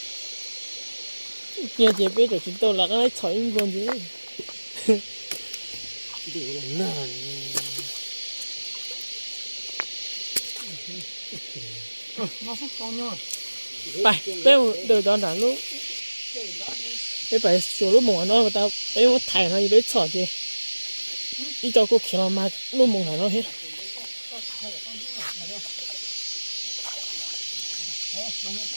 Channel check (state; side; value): inverted; both; correlation -1.00